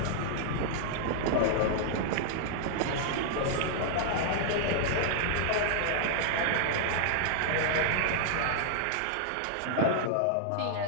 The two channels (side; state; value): both; different; correlation -0.01